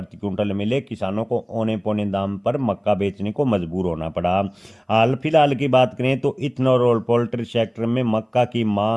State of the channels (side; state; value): both; identical; correlation 1.00